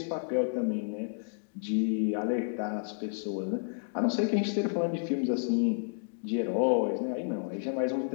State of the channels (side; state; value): right; silent; digital silence